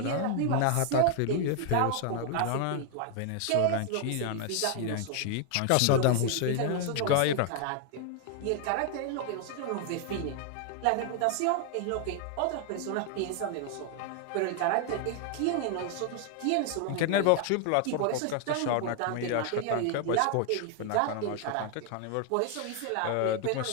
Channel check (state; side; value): different; both; correlation 0.00